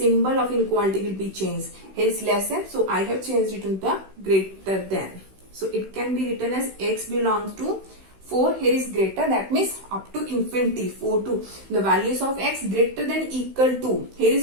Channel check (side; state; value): left; late; 16 ms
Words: of inequality will be changed. Here is less than, so I have changed it into the greater than. So it can be written as x belongs to 4, here is greater, that means up to infinity, 4 to the values of x greater than equal to. Here